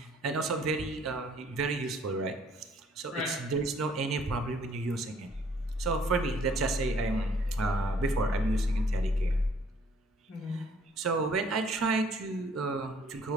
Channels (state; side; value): normal; both; correlation 0.61